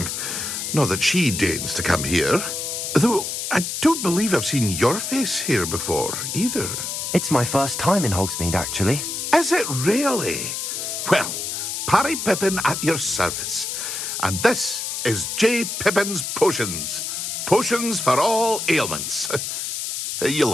Not that she deigns to come here. Though, I don't believe I've seen your face here before, either. It's my first time in Hogsmeade, actually. Is it really? Well, Parry Pippin at your service. And this is J. Pippin's Potions. Potions for all ailments.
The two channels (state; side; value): noise; left; hiss, 4 dB below the sound